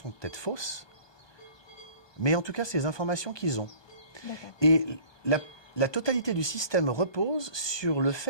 peut-être fausses, mais en tout cas, c'est les informations qu'ils ont. D'accord. Et la totalité du système repose sur le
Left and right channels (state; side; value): late; right; 1.2 ms